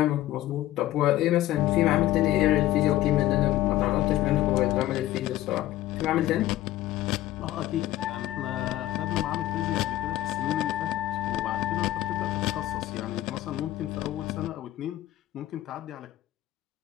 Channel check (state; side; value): quieter; right; 14.6 dB